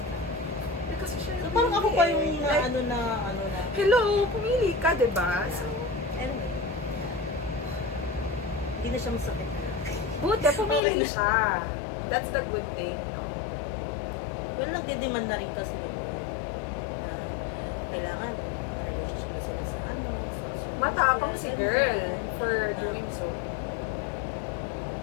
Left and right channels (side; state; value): right; drops out; at 10.8 s